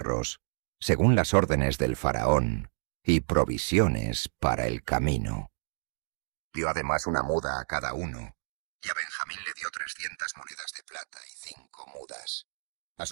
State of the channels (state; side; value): silent; left; digital silence